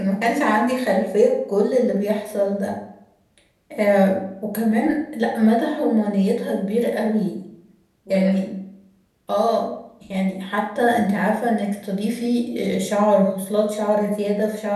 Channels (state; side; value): identical; both; correlation 1.00